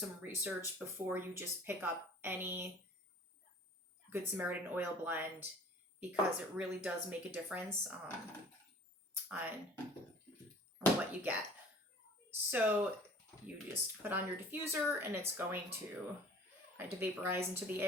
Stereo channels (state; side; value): normal; both; correlation 0.49